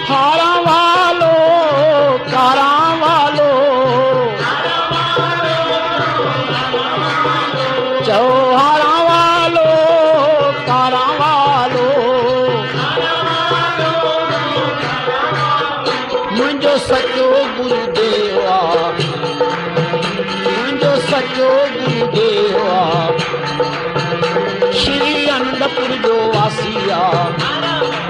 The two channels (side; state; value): both; identical; correlation 1.00